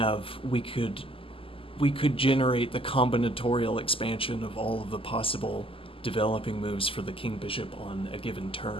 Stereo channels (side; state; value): right; late; 0.26 ms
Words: we could generate the combinatorial expansion of all of the possible developing moves for the king bishop on a given